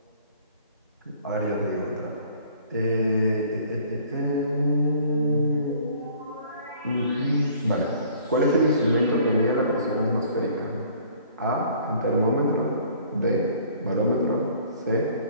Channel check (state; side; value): inverted; both; correlation -0.54